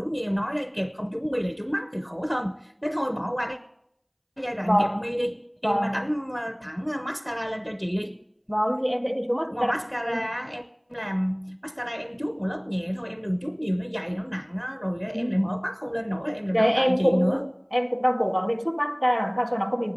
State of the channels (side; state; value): both; identical; correlation 1.00